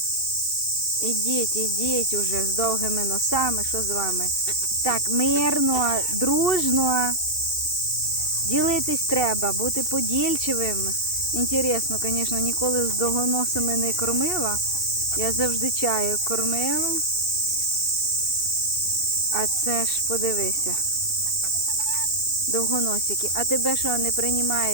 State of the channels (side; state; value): right; late; 2.7 ms